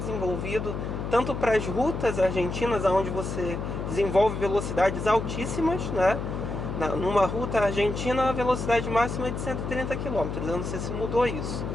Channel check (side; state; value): left; noise; hum, 4 dB below the sound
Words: tanto para as rutas argentinas, onde você desenvolve velocidades altíssimas, né? Numa ruta argentina, a velocidade máxima é de 130 km, eu não sei se mudou isso,